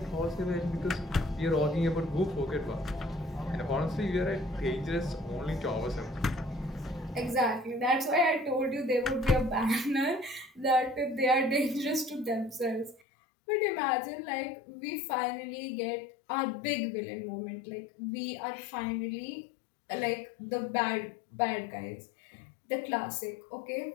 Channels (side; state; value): right; drops out; at 13.0 s